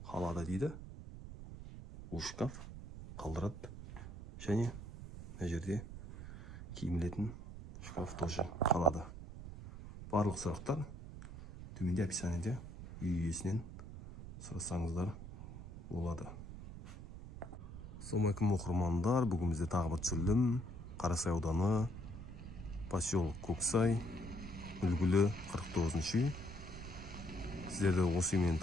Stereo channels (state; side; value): noise; right; rumble, 11 dB below the sound